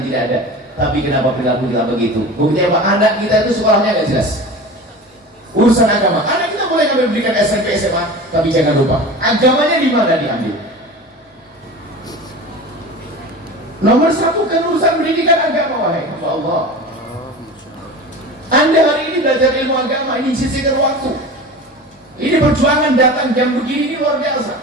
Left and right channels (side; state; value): both; normal; correlation 0.34